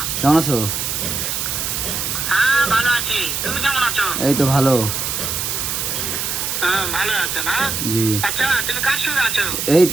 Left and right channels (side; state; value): right; noise; hiss, 2 dB below the sound